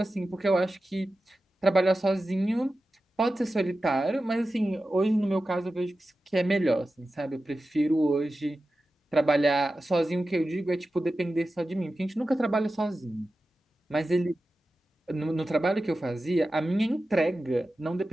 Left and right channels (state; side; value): normal; both; correlation 0.93